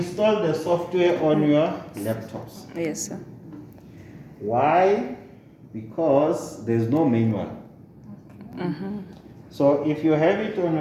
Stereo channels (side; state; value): both; identical; correlation 1.00